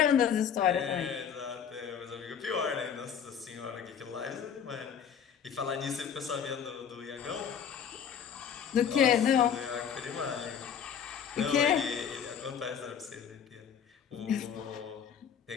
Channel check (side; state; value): right; quieter; 7.9 dB